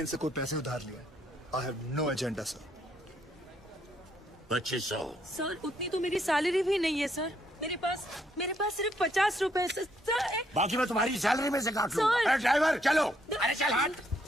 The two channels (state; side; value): normal; both; correlation 0.72